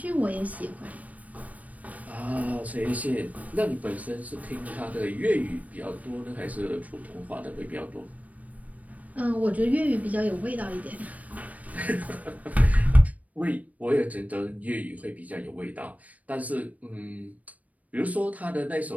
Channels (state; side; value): late; left; 0.071 ms